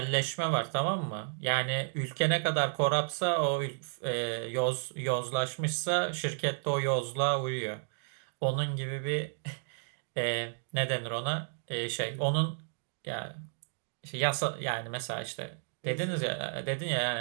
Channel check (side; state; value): left; silent; digital silence